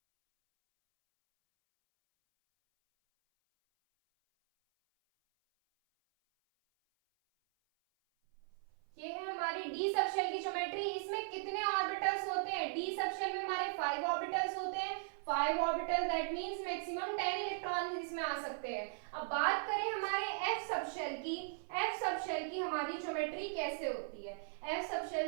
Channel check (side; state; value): left; silent; 52 dB below the other